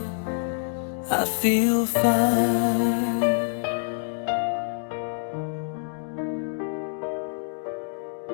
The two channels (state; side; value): silent; right; digital silence